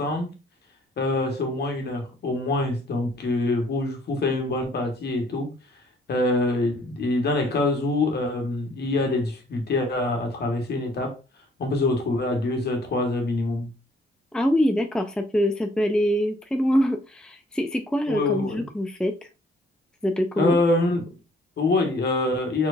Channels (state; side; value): normal; both; correlation 0.61